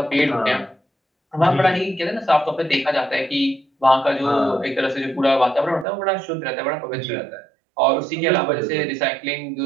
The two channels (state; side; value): drops out; left; at 5.9 s